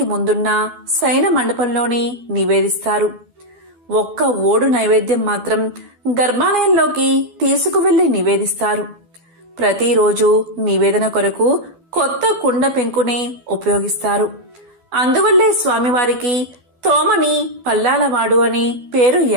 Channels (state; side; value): late; left; 12 ms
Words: ముందున్న శయన మండపంలోనే నివేదిస్తారు. ఒక్క ఓడు నైవేద్యం మాత్రం గర్భాలయంలోకి తీసుకువెళ్లి నివేదిస్తారు. ప్రతిరోజు నివేదన కొరకు కొత్త కుండ పెంకునే ఉపయోగిస్తారు. అందువల్లే స్వామివారికి తోమని పల్లాలవాడు అనే పేరు